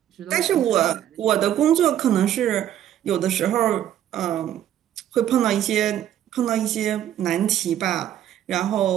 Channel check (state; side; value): quieter; left; 11.2 dB